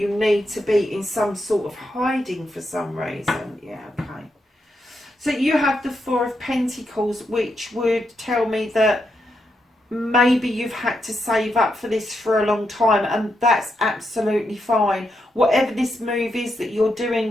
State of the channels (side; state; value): both; normal; correlation 0.83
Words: need to be in some sort of hiding for some reason. Yeah, okay. So you have the Four of Pentacles, which would tell me that maybe you've had to save up for this for a long time. And that's absolutely fine. Whatever this move is that you're